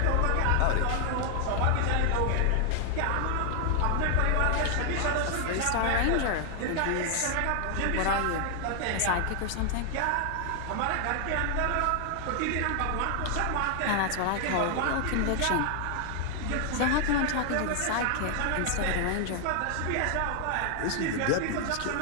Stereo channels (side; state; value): both; different; correlation 0.00